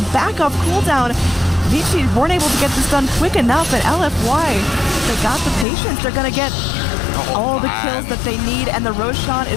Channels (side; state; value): right; drops out; at 5.7 s